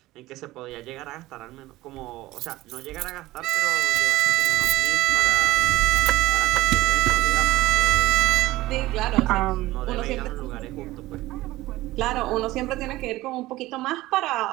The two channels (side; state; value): left; quieter; 17.8 dB